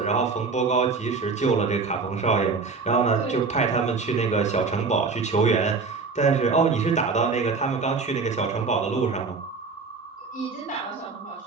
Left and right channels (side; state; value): left; quieter; 4.6 dB